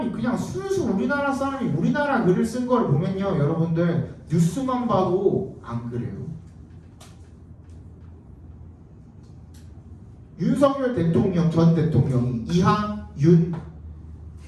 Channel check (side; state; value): both; identical; correlation 1.00